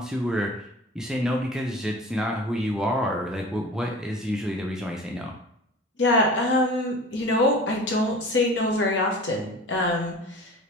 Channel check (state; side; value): normal; both; correlation 0.39